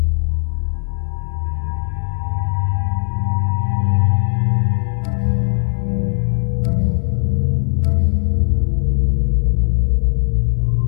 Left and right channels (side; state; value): right; silent; digital silence